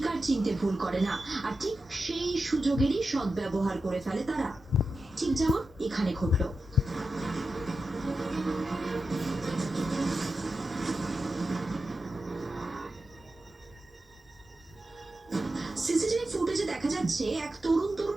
চিনতে ভুল করে না, আর ঠিক সেই সুযোগেরই সদ্ব্যবহার করে ফেলে তারা। ঠিক যেমন এখানে ঘটল। সিসিটিভি ফুটেজে দেখা যাচ্ছে এক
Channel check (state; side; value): normal; both; correlation 0.91